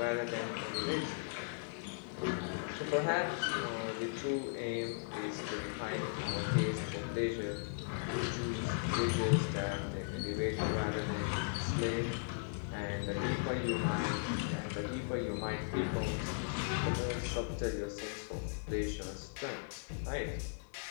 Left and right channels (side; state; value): right; silent; digital silence